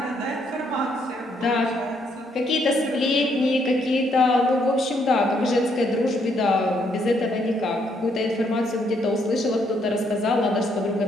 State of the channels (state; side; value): normal; both; correlation 0.72